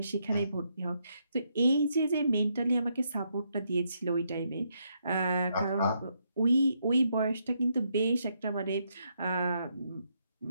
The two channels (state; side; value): inverted; both; correlation -0.77